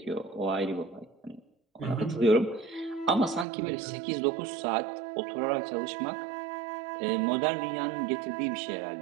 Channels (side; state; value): left; drops out; at 3.5 s